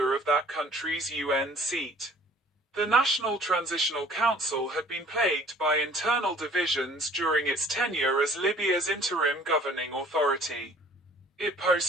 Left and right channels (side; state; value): both; normal; correlation 0.53